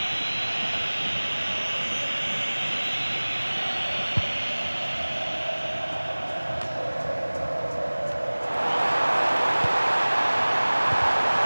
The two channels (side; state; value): both; inverted; correlation -1.00